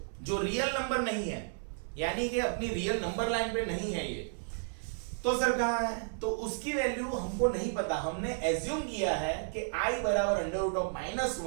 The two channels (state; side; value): silent; left; digital silence